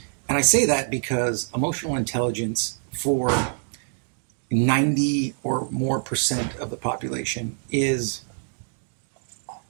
And I say that because emotional intelligence for 90 or more percent of the population is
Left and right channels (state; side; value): silent; left; 60 dB below the other